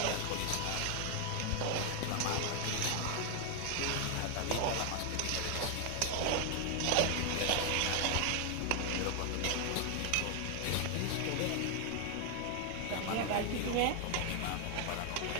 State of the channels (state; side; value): different; both; correlation 0.00